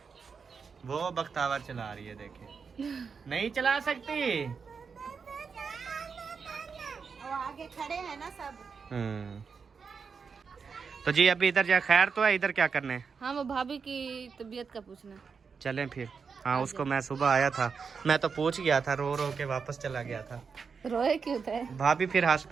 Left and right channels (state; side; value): quieter; left; 5.6 dB